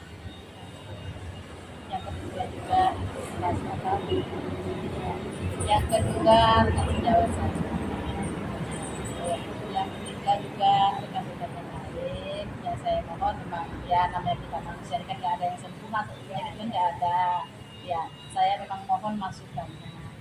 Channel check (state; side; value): identical; both; correlation 1.00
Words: juga rekan sejawat saya. Yang ketiga juga rekan-rekan yang lain. Ya saya mohon memang ya namanya kita manusia ini kan nggak ada yang sempurna, tentunya itu kan nggak ada. Ya saya memang mohon masukannya.